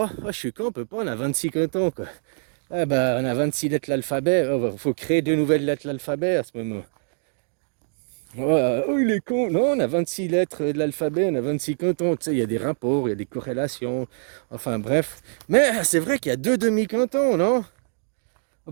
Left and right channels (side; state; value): left; silent; digital silence